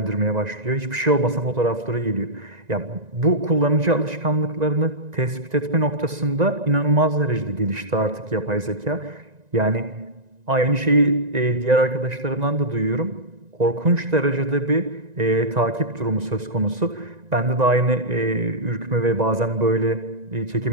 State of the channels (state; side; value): late; left; 1.9 ms